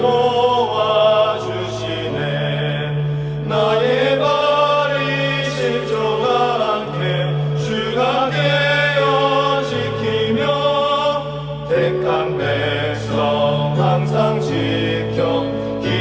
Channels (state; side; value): identical; both; correlation 1.00